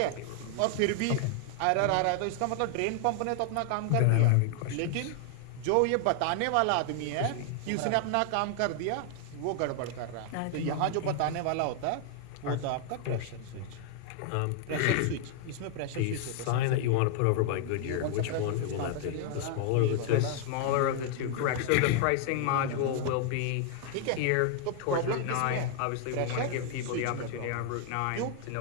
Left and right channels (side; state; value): both; different; correlation 0.00